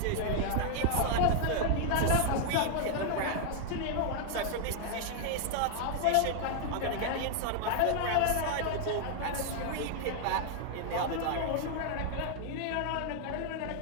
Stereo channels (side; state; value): both; different; correlation 0.00